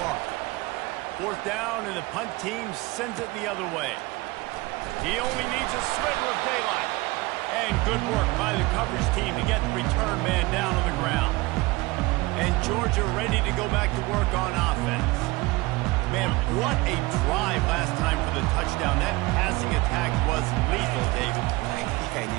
4th down, and the punt team sends it the other way. He only needs a sliver of daylight. And good work by the coverage team to get the return man down on the ground. And Georgia ready to go back to work on offense. Man, what a drive last time for the touchdown. That passing attack was lethal, David. And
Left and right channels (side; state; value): left; quieter; 22.1 dB